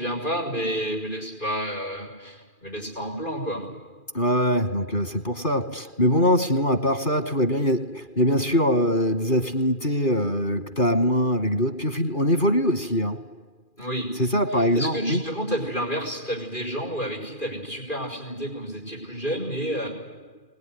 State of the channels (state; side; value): late; right; 2.4 ms